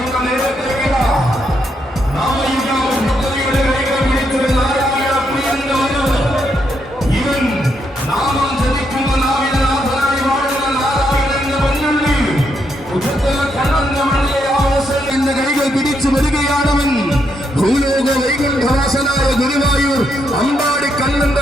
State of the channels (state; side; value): normal; both; correlation 0.78